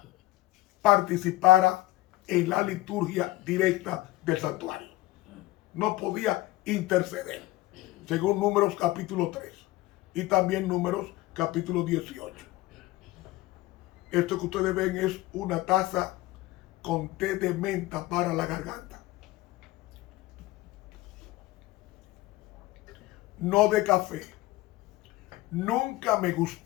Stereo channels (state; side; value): quieter; right; 18.1 dB